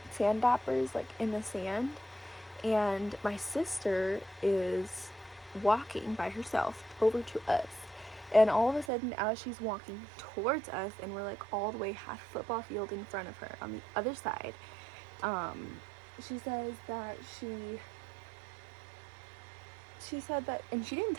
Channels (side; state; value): left; drops out; at 8.9 s